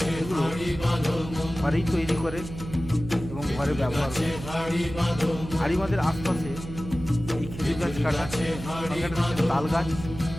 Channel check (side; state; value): right; noise; hum, 11 dB below the sound